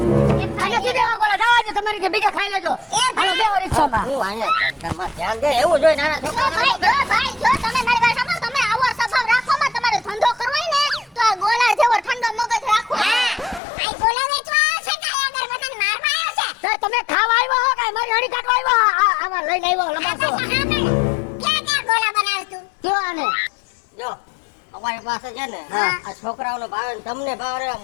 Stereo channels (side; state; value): right; drops out; at 13.6 s